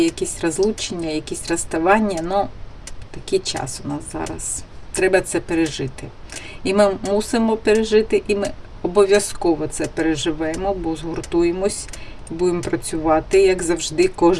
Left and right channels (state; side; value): identical; both; correlation 1.00